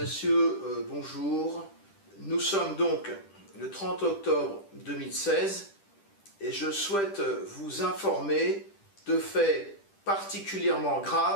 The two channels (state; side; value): late; right; 10 ms